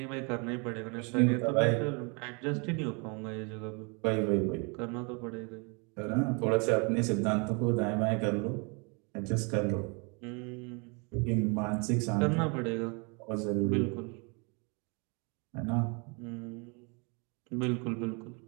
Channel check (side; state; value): left; quieter; 32.8 dB